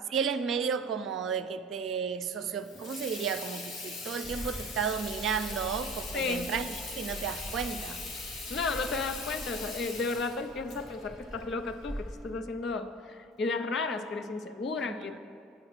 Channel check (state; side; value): normal; both; correlation 0.37